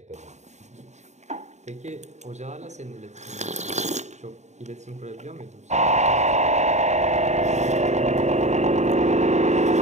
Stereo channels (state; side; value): late; left; 0.33 ms